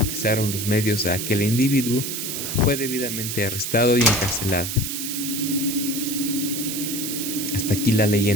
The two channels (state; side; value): noise; right; hiss, 4 dB below the sound